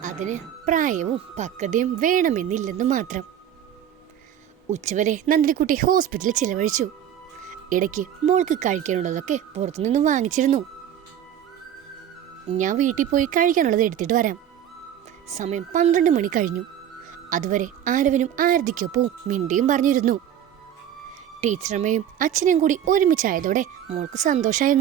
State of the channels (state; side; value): quieter; left; 10.1 dB